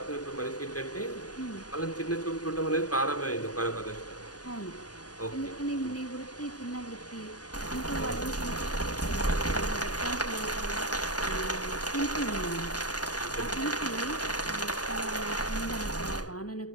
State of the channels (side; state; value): right; late; 0.68 ms